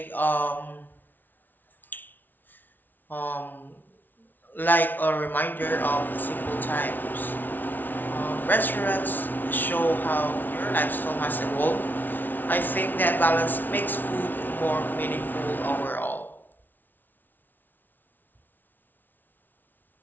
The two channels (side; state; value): right; late; 0.087 ms